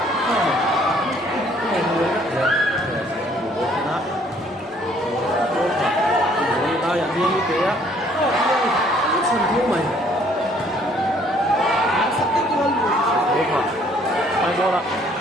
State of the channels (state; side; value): normal; both; correlation 0.61